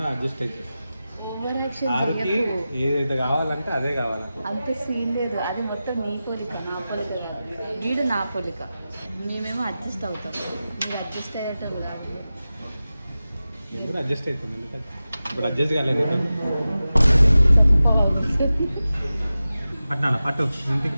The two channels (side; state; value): both; inverted; correlation -0.94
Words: అడ్జస్ట్ అయితే ఓవర్ యాక్షన్ ఆరుకి చేయకు. ఏదైతే కావాలంటే అదే కావాలి. అంత సీన్ లేదు, అది మొత్తం నీ పోలిక, నా పోలిక కాదు. వీడు నా పోలిక, మేమేమో అడ్జస్ట్ అవుతాం. మీరు అడ్జస్ట్ అయ్యేటం కాదు. నేను కూడా అడ్జస్ట్ అవుతుంది. ఎందుకంటే ఇప్పుడు అడ్జస్ట్ కాలేదు. పట్నాను పట్టు. ఇంటికి